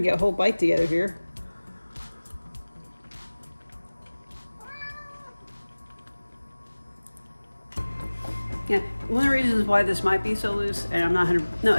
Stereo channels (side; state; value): both; inverted; correlation -1.00